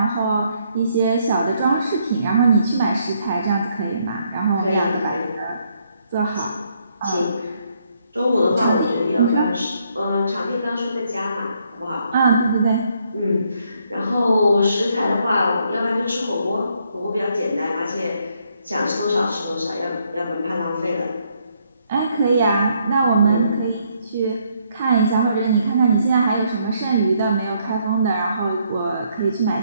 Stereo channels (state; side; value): inverted; both; correlation -0.72